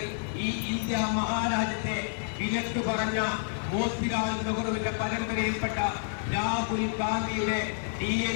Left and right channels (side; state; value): right; silent; 58 dB below the other